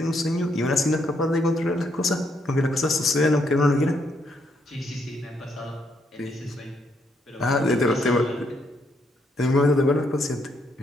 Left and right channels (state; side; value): normal; both; correlation 0.75